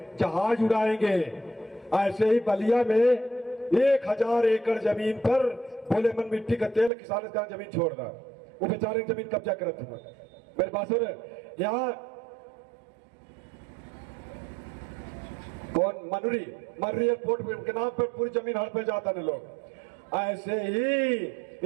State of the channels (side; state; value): left; drops out; at 6.9 s